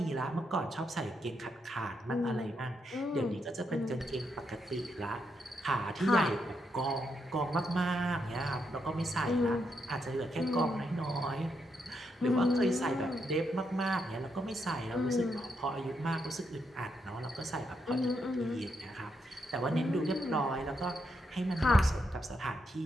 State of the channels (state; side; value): normal; both; correlation 0.80